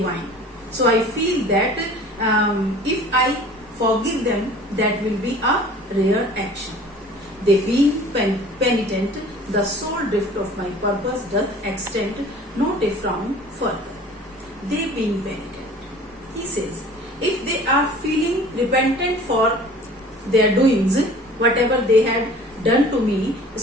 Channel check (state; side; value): normal; both; correlation 0.46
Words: So I feel that if I forgive them, that will be a rare action. They being penitent, the sole drift of my purpose doth extend not a frown further. They being penitent. He says, if they are feeling repentant for their doings, whatever they had done to me,